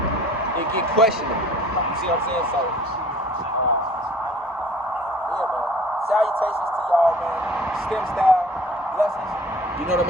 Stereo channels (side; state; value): both; normal; correlation 0.50